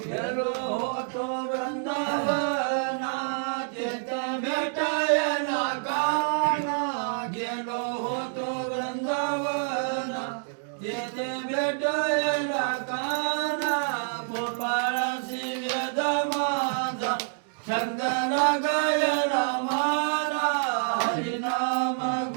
होतो वृंदावना चेत भेटायला काना गेलो होतो वृंदावना येथे भेटायला काना गोपाळाची वेद माझा छंद गायला माना हरिनाम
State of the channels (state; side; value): silent; left; digital silence